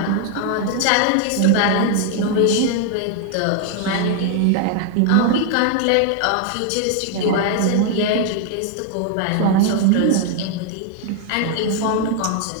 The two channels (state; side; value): different; both; correlation 0.00